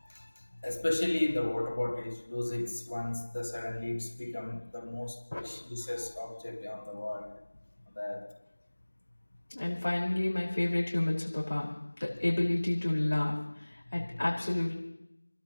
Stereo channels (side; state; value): both; inverted; correlation -1.00